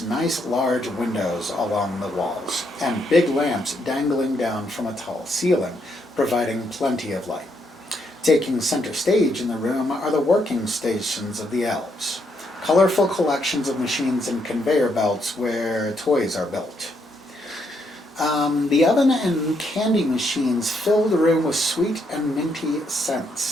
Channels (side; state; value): both; normal; correlation 0.76